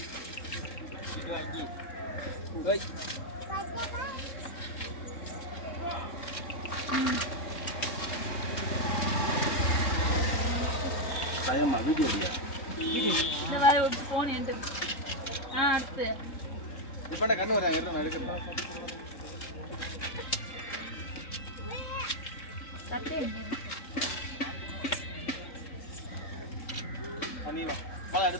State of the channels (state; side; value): late; right; 3.7 ms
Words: இது வாங்கி ஓய் சாயம்மா வீடியோ இல்லையா இந்த வர ஒரு போன் என்கிட்ட. அடுத்து இப்போ என்ன கண்ணு வராங்க எடுத்து எடுக்கணும் சட்டை நீ வா பழம் எடு